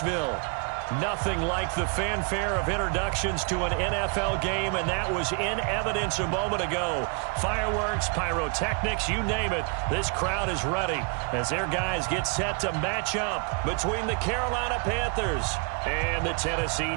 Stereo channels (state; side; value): quieter; left; 35.6 dB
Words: Nothing like the fanfare of introductions to an NFL game, and that was in evidence a moment ago. Fireworks, pyrotechnics, you name it. This crowd is ready as their guys get set to match up between the Carolina Panthers and the